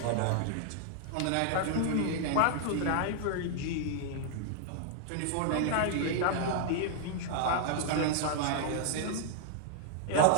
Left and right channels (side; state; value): both; different; correlation -0.01